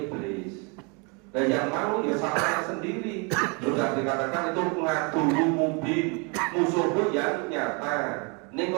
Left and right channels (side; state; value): left; quieter; 32.9 dB